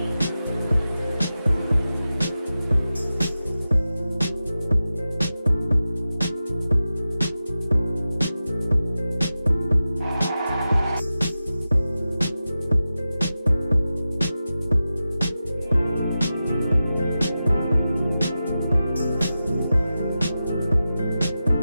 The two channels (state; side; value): inverted; both; correlation -0.93